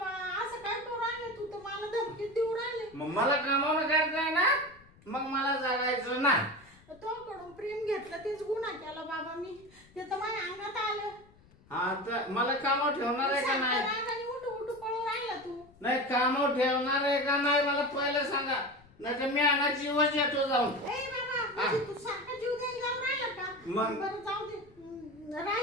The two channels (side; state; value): left; noise; rumble, 27 dB below the sound